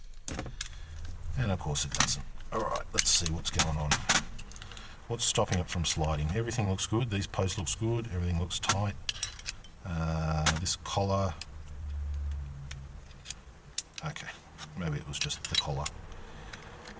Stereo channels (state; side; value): identical; both; correlation 1.00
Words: And of course it doesn't. Alright, let's see what's going on. What's stopping it from sliding? Everything looks good. These posts looks good. Everything looks tight. This collar. Okay, maybe it was just the collar.